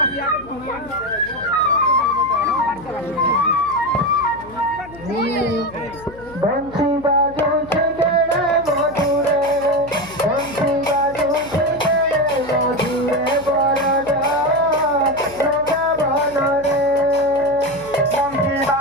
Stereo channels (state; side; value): noise; left; hum, 19 dB below the sound